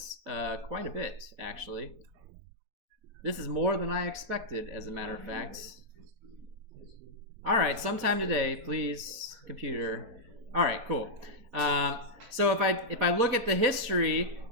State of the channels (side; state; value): left; late; 4.2 ms